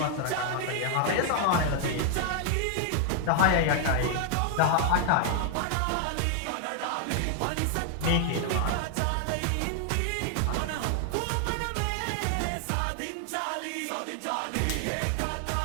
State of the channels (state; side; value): different; both; correlation 0.00